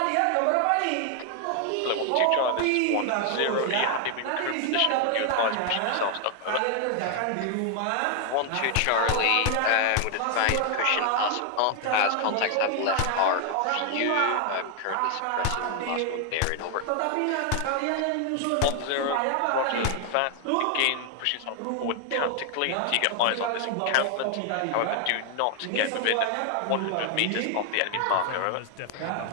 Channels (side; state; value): both; different; correlation 0.00